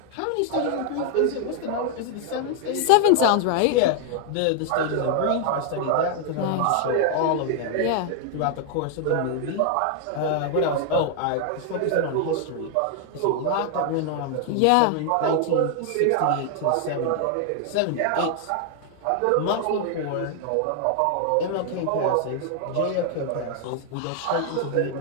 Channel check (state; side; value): different; both; correlation 0.00